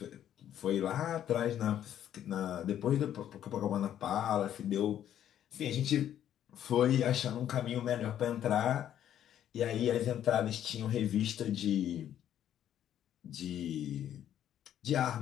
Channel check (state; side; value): quieter; right; 10.7 dB